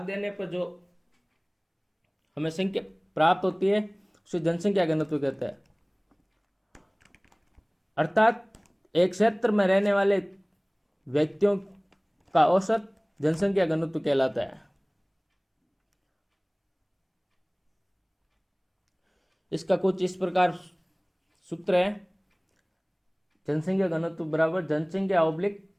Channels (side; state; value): both; identical; correlation 1.00